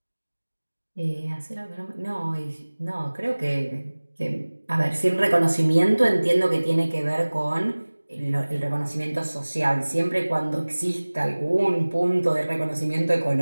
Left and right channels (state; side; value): inverted; both; correlation -1.00